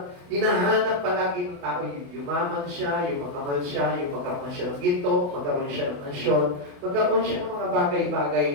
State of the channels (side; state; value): left; late; 28 ms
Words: hinahanap palagi ng tao. Yung yumaman siya, yung magkamal siya, yung magkaroon siya ng ginto, magkaroon siya ng mansyon, magkaroon siya ng mga bagay-bagay